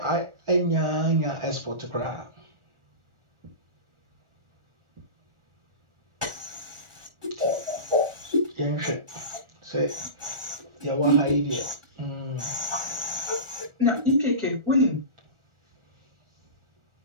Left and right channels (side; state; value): left; late; 1.4 ms